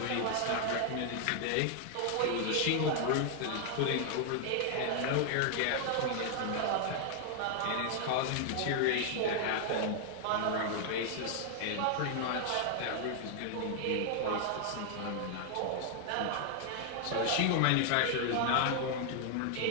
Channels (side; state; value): both; different; correlation 0.00